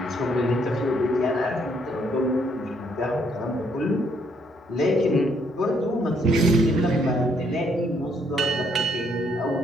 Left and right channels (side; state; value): both; normal; correlation 0.70